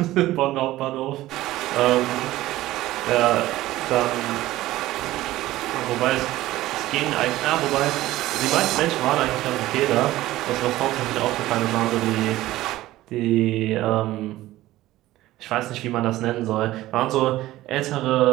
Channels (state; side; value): quieter; left; 16.2 dB